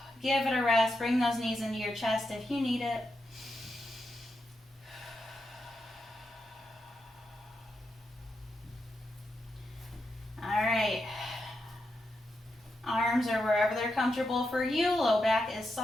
Give it a rest. Bring those knees into your chest if you need it. All right. Arms are wherever they're comfortable for you. Low back is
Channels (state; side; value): normal; both; correlation 0.85